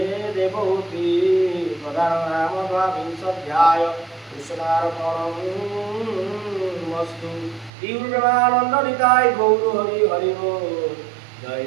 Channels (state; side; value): drops out; left; at 7.7 s